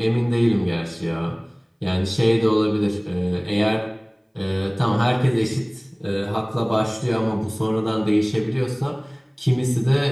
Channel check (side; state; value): both; identical; correlation 1.00